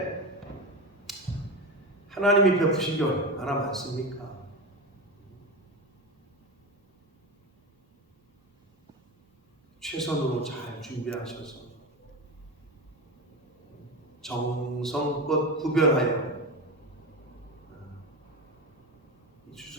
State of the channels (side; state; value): both; normal; correlation 0.22